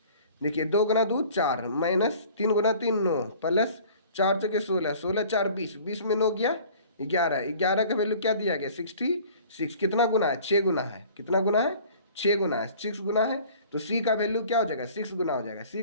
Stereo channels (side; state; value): both; inverted; correlation -0.49